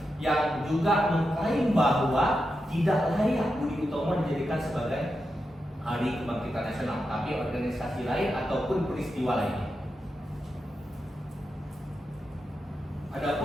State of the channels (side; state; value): both; normal; correlation 0.88